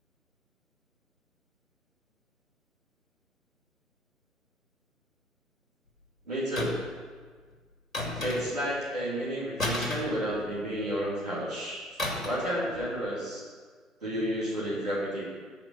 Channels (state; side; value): normal; both; correlation 0.55